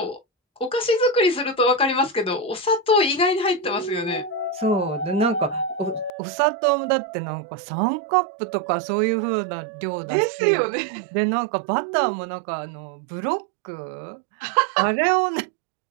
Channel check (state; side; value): drops out; left; at 6.1 s